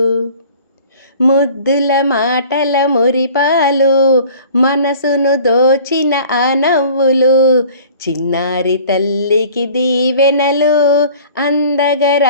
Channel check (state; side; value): inverted; both; correlation -0.48